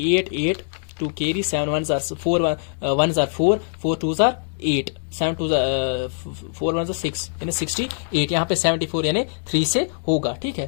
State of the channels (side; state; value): right; silent; digital silence